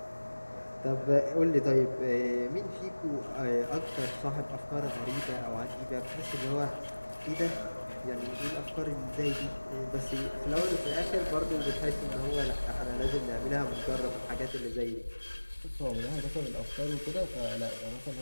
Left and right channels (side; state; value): both; inverted; correlation -1.00